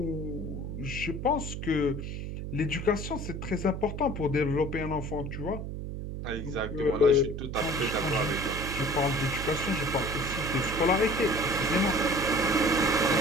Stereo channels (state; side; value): noise; right; hum, 6 dB below the sound